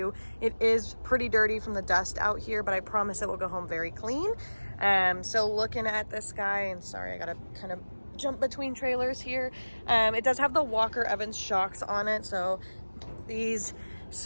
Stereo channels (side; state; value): both; inverted; correlation -1.00